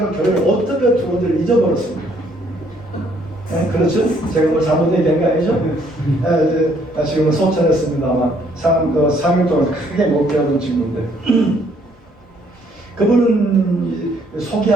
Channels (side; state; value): both; normal; correlation 0.66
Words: 교회를 어떻게 들어온지를 잊어버렸습니다. 네, 그렇죠? 제가 뭐 잘못 얘기한 거 아니죠? 네, 지금은 소천했습니다만 3일 동안 크게 못 배우던 친구인데 그분은